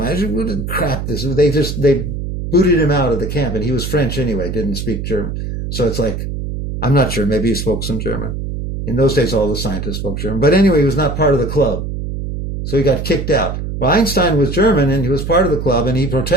crap this is? They booted him out of the camp, and he was French anyway, didn't speak German. So it's I'm not sure, maybe he spoke some German. In those days, all the scientists spoke German. But anyway, he was not part of the club. So he got kicked out. Well, Einstein was German, and he was part of the club, and he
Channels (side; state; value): right; noise; hum, 5 dB below the sound